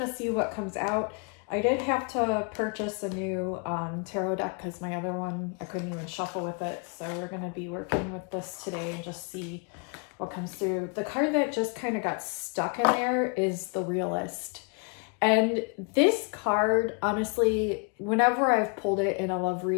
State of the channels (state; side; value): quieter; right; 35.9 dB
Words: see what comes out. I did have to purchase a new tarot deck because my other one, I couldn't even shuffle with it. So we're gonna be working with this today and just see what comes through. The card that just kind of got stuck in there is the Realist. And this card, honestly, whenever I've pulled it in a love